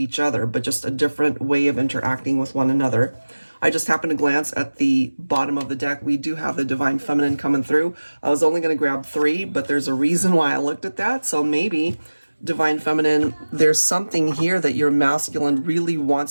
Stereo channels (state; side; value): inverted; both; correlation -1.00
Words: other, but just a different way of interacting with one another. I just happened to glance at the bottom of the deck. We do have the Divine Feminine coming through. I was only going to grab 3, but there's a reason why I looked at that. So maybe Divine Feminine, there's something here that your masculine really